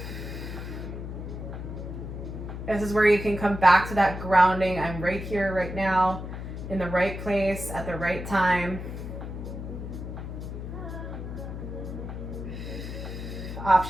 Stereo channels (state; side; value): noise; left; hum, 7 dB below the sound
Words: This is where you can come back to that grounding. I'm right here, right now, in the right place, at the right time.